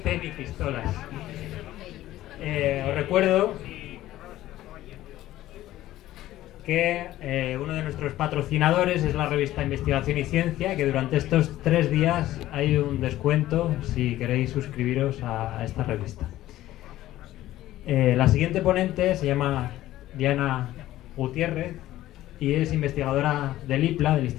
ni pistolas. Os recuerdo que uno de nuestros patrocinadores es la revista Investigación y Ciencia, que durante estos 3 días hay un descuento si queréis suscribiros a esta revista. La siguiente ponente se llama Diana Gutiérrez y es investigadora del IPLA, del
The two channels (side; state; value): right; quieter; 14.7 dB